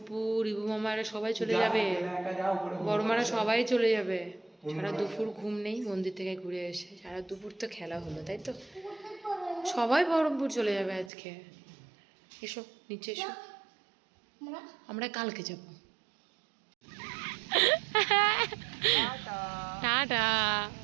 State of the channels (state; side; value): drops out; left; at 11.1 s